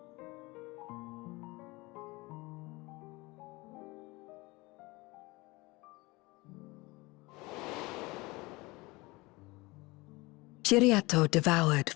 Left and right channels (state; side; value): quieter; right; 23.0 dB